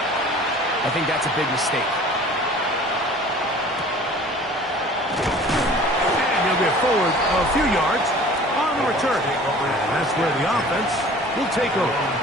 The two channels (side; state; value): both; normal; correlation 0.46